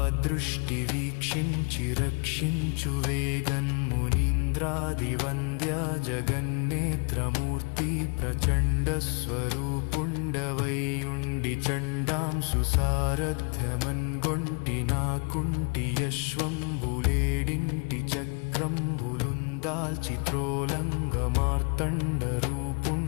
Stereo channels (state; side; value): quieter; right; 36.3 dB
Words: వీక్షించి రక్షించు వేగన్మునీంద్రాదివంద్య జగన్నేత్రమూర్తి ప్రచండ స్వరూపుండవైయుండి చండాంసు సారథ్యమన్గొంటి నాకుంటి యశ్వంబులేడింటి చక్రంబులుందాల్చి త్రోలంగ మార్తండ